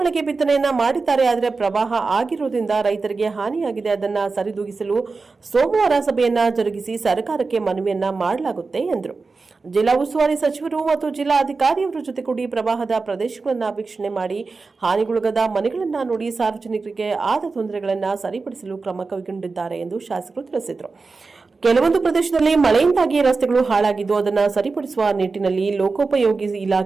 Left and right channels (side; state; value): left; quieter; 4.2 dB